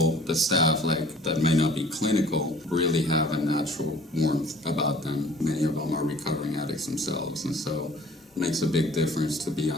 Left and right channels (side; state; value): both; normal; correlation 0.51